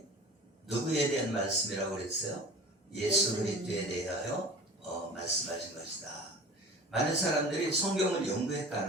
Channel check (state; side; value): normal; both; correlation 0.39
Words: 누구에 대한 말씀이라고 그랬어요? 예수 그리스도에 대하여 말씀하신 것이다. 많은 사람들이 성경을